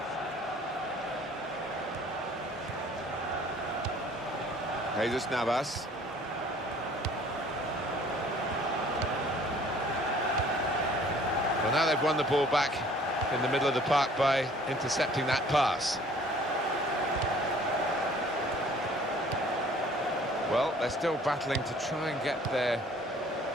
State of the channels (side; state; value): both; normal; correlation 0.54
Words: Jesus Navas. Well, now they've won the ball back in the middle of the park by intercepting that pass. Well, they're still battling to try and get their